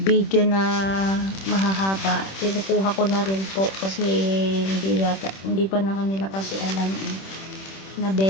na mahahaba. Kinukuha ko na rin po kasi hindi pa na kanila kasi alam na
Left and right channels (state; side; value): late; right; 26 ms